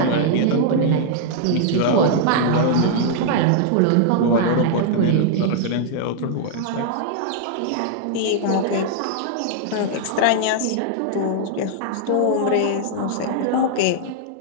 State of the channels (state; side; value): different; both; correlation -0.01